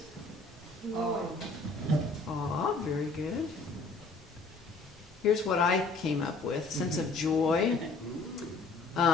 Aw, very good. Here's what I came up with. Sense of joy.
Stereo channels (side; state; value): right; quieter; 3.5 dB